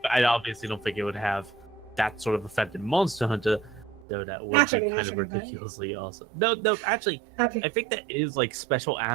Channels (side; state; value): left; drops out; at 4.0 s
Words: I obviously don't think it would have that sort of effect in Monster Hunter, though that would Naturally, be kind of naturally, but- ridiculously awesome. No, actually, That'd I be- think that is like special